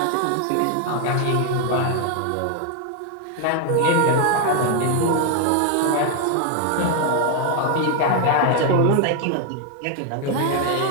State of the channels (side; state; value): both; different; correlation 0.01